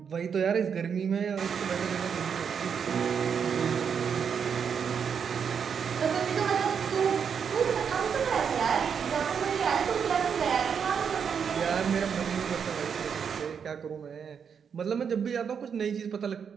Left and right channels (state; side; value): quieter; left; 7.0 dB